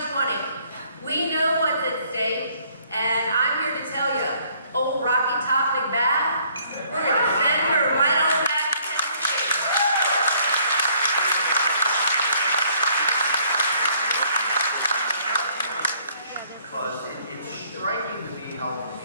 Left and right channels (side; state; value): both; inverted; correlation -0.63